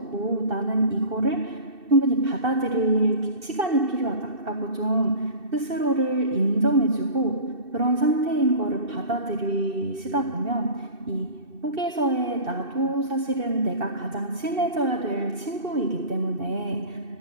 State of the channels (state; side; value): late; left; 2.7 ms